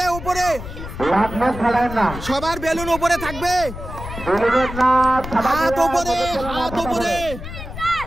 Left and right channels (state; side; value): noise; left; rumble, 10 dB below the sound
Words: উপরে, লাখ মাছ ফাটায় না, সবার বেলুন উপরে থাকবে। বেলুনের না হাত উপরে, হাত উপরে,